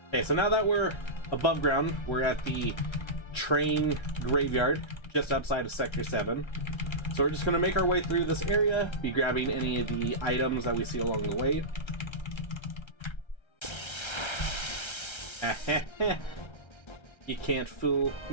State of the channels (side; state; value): right; late; 1.3 ms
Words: Okay, so now that we're above ground, we're at the train graveyard just outside of Sector 7. So we're just gonna make our way through this area, be grabbing any of the items that we see along the way. You can't fool